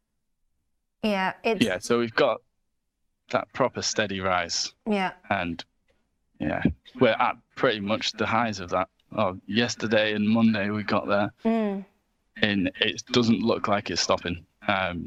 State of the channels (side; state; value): both; identical; correlation 1.00